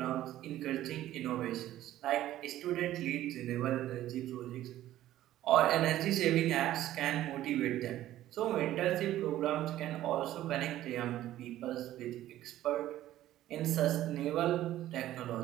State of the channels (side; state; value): left; quieter; 13.7 dB